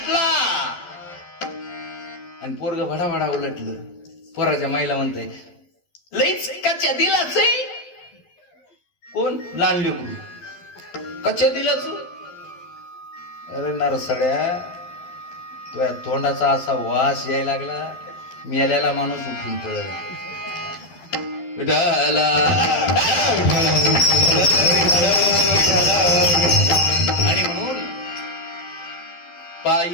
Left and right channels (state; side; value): late; right; 12 ms